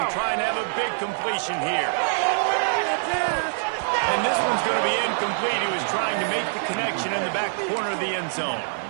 trying to have a big completion here. And this one's going to be incomplete. He was trying to make the connection in the back corner of the end zone.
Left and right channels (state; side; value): silent; left; digital silence